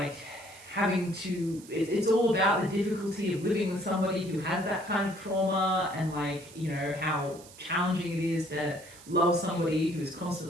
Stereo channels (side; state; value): right; noise; hiss, 20 dB below the sound